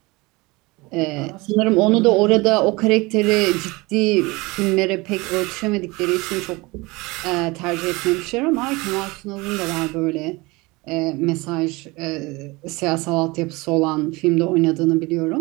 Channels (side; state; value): left; quieter; 23.6 dB